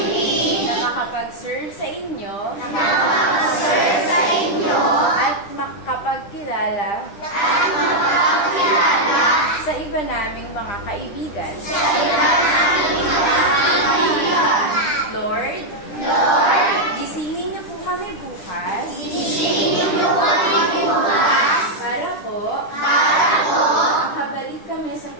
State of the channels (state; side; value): late; right; 10 ms